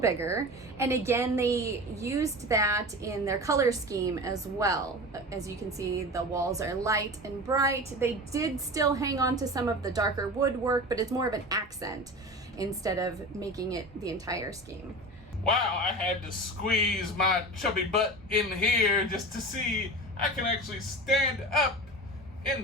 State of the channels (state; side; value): normal; both; correlation 0.31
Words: And again, they used that in their color scheme as well. As you can see, the walls are light and bright. They did still hang on to some of the darker woodwork, but it's more of an accent instead of making it the entire scheme. Wow, I had to squeeze my chubby butt in here just to see I can actually stand up in